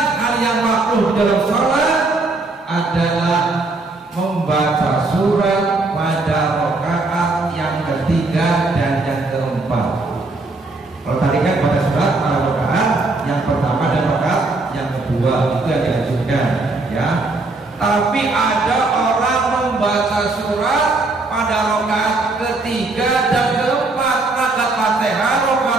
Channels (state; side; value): quieter; left; 3.3 dB